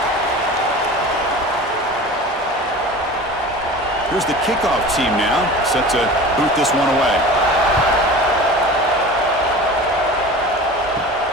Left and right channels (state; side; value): normal; both; correlation 0.37